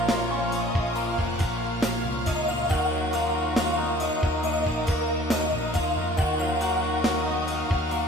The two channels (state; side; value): normal; both; correlation 0.52